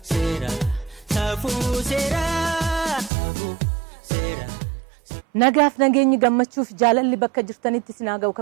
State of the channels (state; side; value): drops out; left; at 3.1 s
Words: sera. Safu sera. Safu sera. Nagaaf nageenyi gammachuuf jaalalli bakka jirtanitti sinaa ga'u